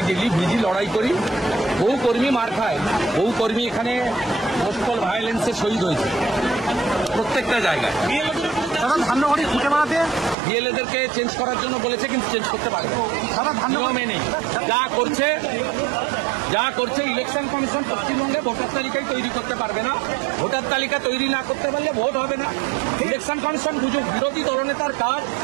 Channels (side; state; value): left; drops out; at 10.4 s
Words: ডেলি ভিজি লড়াই করি। বহু কর্মী মার খায়, বহু কর্মী এখানে পোস্টাল ভায়োলেন্সে শহীদ হয়েছে প্রত্যেকটা জায়গায়। বিএলএদেরকে চেঞ্জ করার জন্য বলেছে, কিন্তু চেঞ্জ করতে পারবে নিয়মে নেই। যা করছে ইলেকশন কমিশন পশ্চিমবঙ্গে ভোটার তালিকায় তৈরি করতে পারবে না। ভোটার তালিকা তৈরি না করতে পারলে ভোট হবে না। ইলেকশন কমিশন বুঝুক, বিরোধী দলনেতার কাজ।